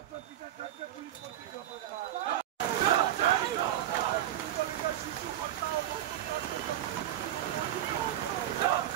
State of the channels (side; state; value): left; quieter; 12.3 dB